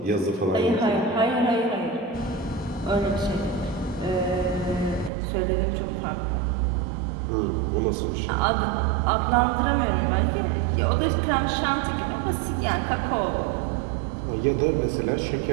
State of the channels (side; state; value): left; drops out; at 5.1 s